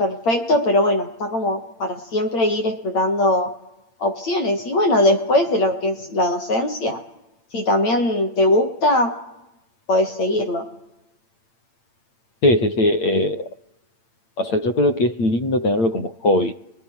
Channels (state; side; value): late; right; 8.8 ms